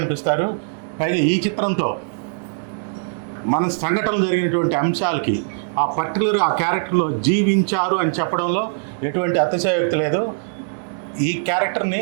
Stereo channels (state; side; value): silent; left; digital silence